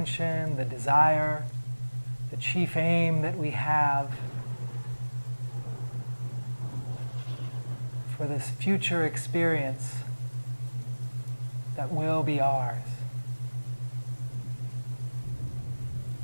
the desire, the chief aim that we have for this future experience that will be ours.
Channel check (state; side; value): inverted; both; correlation -1.00